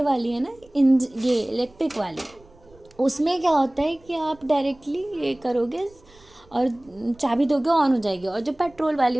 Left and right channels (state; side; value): noise; right; rumble, 28 dB below the sound